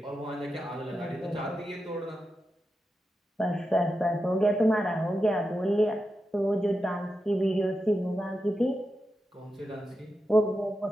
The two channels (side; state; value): both; normal; correlation 0.89